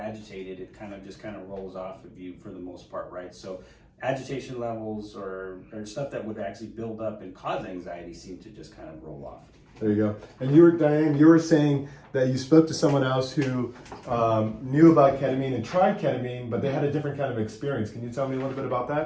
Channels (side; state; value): both; identical; correlation 1.00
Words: it kind of rolls off of you for the most part, right? So agitation levels or stuff that would actually build up and cause anxiety seem to just kind of roll off. There you go. And Diane, you were saying that you spoke to someone else who knew about ketamine and tried ketamine, but they had a different kind of experience. Can you tell me a little bit about